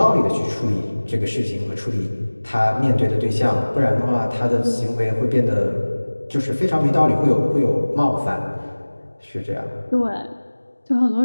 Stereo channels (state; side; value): inverted; both; correlation -1.00